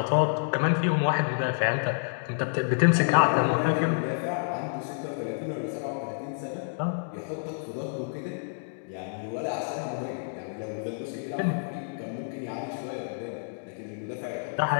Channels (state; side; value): silent; right; digital silence